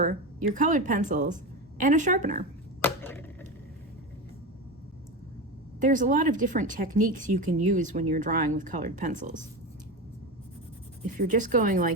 your colored pencils, and a sharpener. There's a lot of different techniques you can use when you're drawing with colored pencils. If you're just going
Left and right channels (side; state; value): both; normal; correlation 0.21